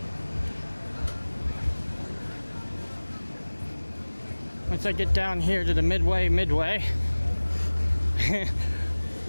Once I get down here to the Midway,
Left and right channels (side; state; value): both; inverted; correlation -1.00